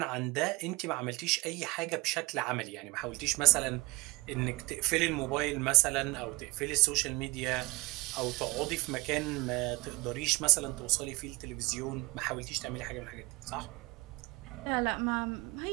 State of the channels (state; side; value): quieter; left; 23.9 dB